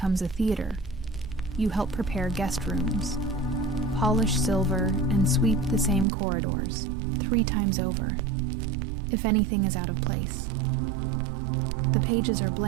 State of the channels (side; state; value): left; drops out; at 6.1 s